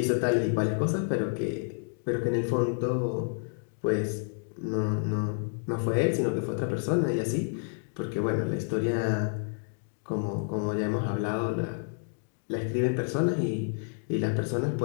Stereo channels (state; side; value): silent; right; digital silence